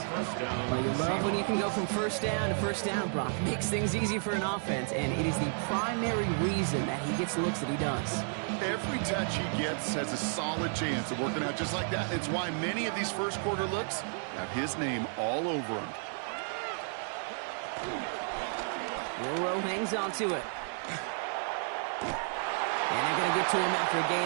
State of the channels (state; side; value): silent; left; 56 dB below the other